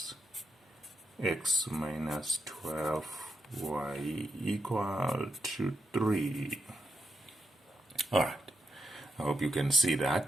x minus 12y equal to 3. Alright, I hope you can see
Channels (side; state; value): both; normal; correlation 0.84